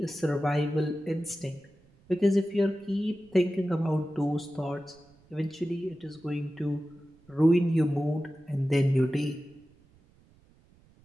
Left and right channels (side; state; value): right; noise; rumble, 29 dB below the sound